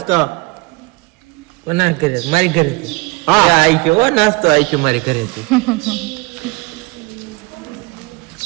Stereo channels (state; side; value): quieter; left; 24.9 dB